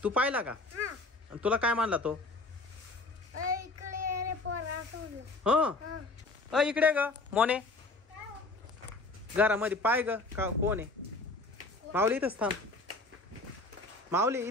तू पाहिला का? आणि तुला काय मानला तो? हा इकडे ग मोने, घरामध्ये पाय ग. का कोण आहे? माऊली इथंच थांब. माऊली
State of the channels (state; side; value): quieter; right; 3.2 dB